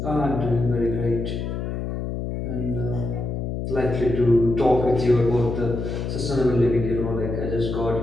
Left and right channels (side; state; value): left; noise; hum, 4 dB below the sound